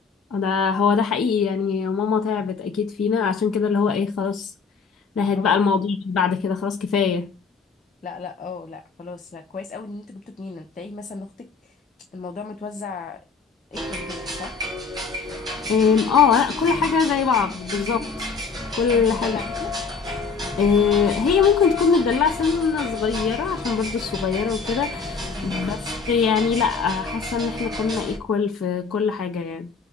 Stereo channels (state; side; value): quieter; right; 5.2 dB